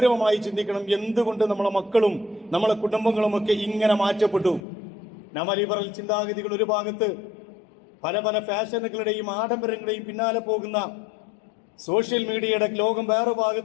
ചിന്തിക്കണം. എന്തുകൊണ്ട് നമ്മളെ മക്കളും നമ്മളെ കുടുംബങ്ങളും ഒക്കെ ഇങ്ങനെ മാറ്റപ്പെട്ടു? നവലിബറൽ ചിന്താഗതികൾ ഒരു ഭാഗത്ത്, പല പല ഫാഷനുകളുടെയും ആഡംബരങ്ങളുടെയും പിന്നാലെ പോകുന്ന സോഷ്യൽ മീഡിയയുടെ ലോകം വേറെ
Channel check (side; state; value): right; drops out; at 4.6 s